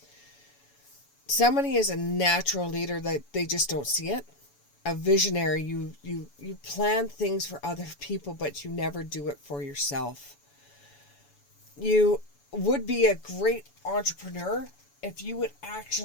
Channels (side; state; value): right; late; 7.0 ms